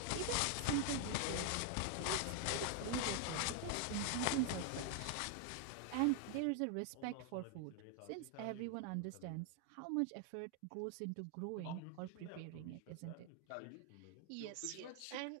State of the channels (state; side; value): different; both; correlation 0.00